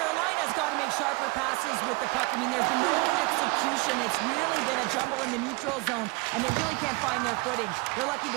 got to make sharper passes with the puck. I mean, there's been no execution. It's really been a jumble in the neutral zone, and they really can't find their footing. They're lucky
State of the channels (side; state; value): left; quieter; 26.5 dB